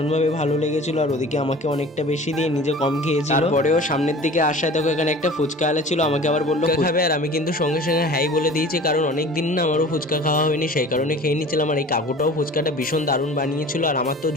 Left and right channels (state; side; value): normal; both; correlation 0.42